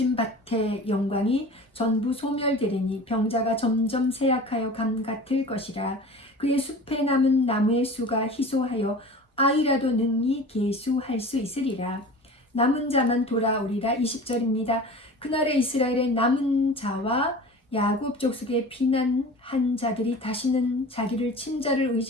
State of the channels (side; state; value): both; normal; correlation 0.38